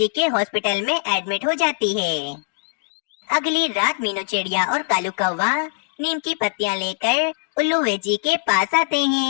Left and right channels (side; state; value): right; silent; digital silence